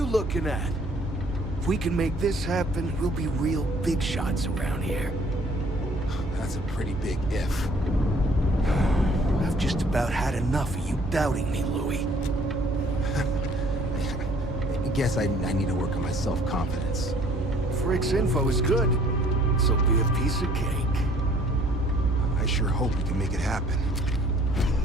looking at? If we can make this happen, we'll be real big shots around here. That's a pretty big if. I've just about had enough of you doubting me, Louis. I guess I need to work on my self-confidence. Frick's info is good. This'll be a piece of cake. I sure hope we can make it happen.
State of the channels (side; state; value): both; normal; correlation 0.57